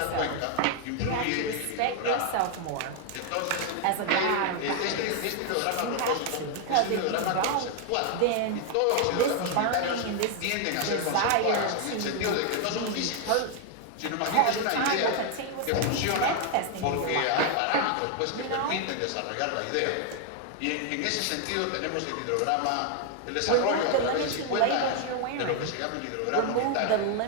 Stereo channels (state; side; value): different; both; correlation 0.00